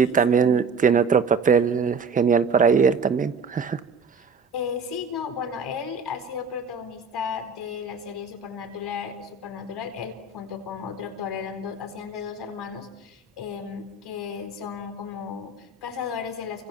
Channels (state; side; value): quieter; left; 4.3 dB